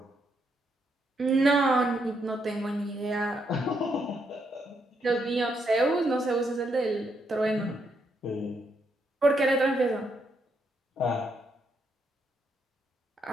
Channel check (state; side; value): normal; both; correlation 0.77